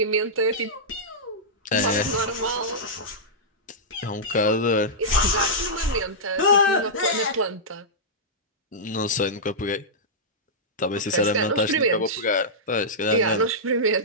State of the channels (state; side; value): normal; both; correlation -0.12